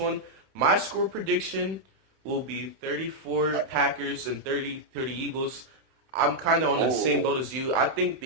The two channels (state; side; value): late; left; 31 ms